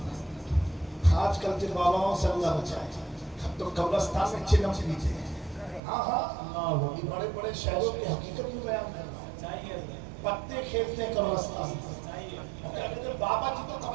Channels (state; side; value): drops out; left; at 5.8 s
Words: میں۔ آج کل کے باباؤں سے اللہ بچائے، تو قبرستان میں چلم پیتے ہیں۔ ہاں ہاں یہ بڑے بڑے شہروں کی حقیقت میں بیان کرنا ہے، پتے کھیلتے ہیں قبرستان میں۔ بابا جی تو